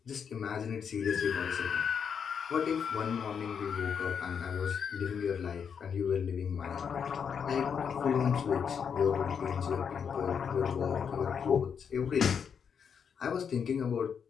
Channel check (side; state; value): right; quieter; 7.0 dB